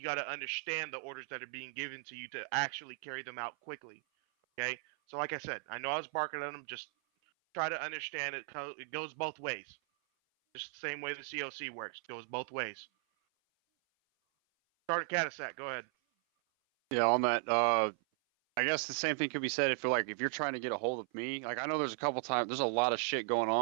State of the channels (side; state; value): left; silent; 53 dB below the other